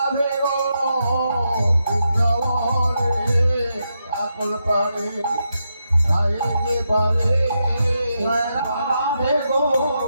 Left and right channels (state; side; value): inverted; both; correlation -0.84